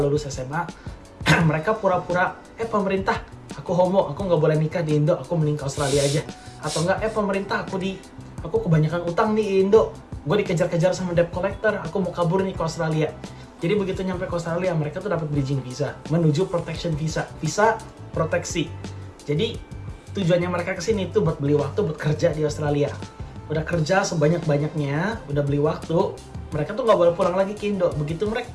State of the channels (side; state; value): both; identical; correlation 1.00